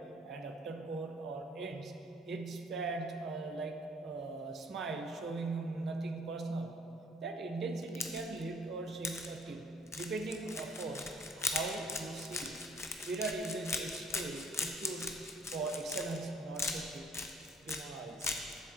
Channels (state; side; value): normal; both; correlation 0.60